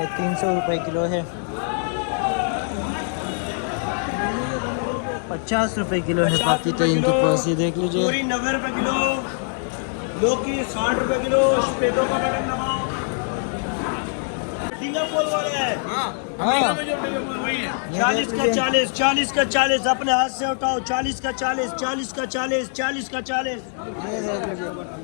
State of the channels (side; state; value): right; silent; 63 dB below the other